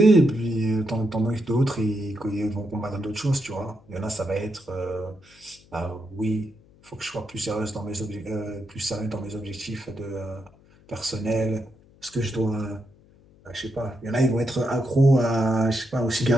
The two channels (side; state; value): left; noise; hum, 27 dB below the sound